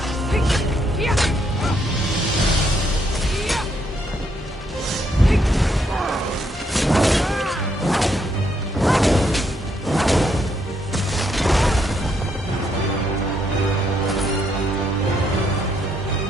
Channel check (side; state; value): both; normal; correlation 0.74